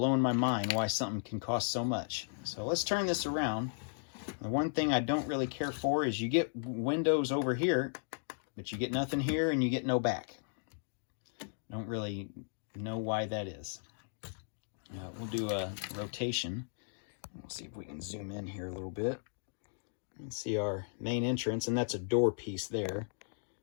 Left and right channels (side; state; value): right; silent; digital silence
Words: my mind why something can cost so much. So let's turn this around. The one thing I don't really care for is you get windows over here, but you get nothing here and you get no back. Don't really know why that is. We'll do a rotation. We'll see if we can zoom in here a little bit and see our main entrance, and that's a door piece there.